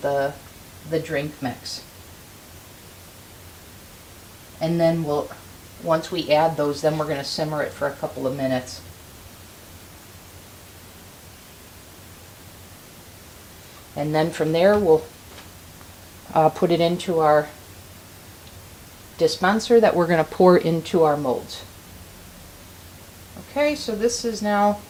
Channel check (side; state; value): both; identical; correlation 1.00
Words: the drink mix. And then once we add those, then we're going to simmer it for a couple of minutes. And then from there, we'll put it into our dispenser that we're going to pour into our molds. Okay, so this is now